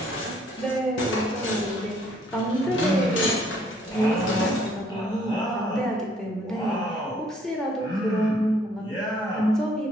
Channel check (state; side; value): normal; both; correlation 0.63